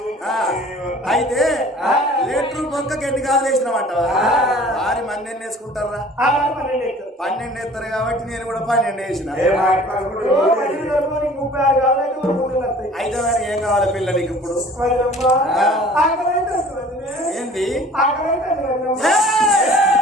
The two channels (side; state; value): both; normal; correlation 0.48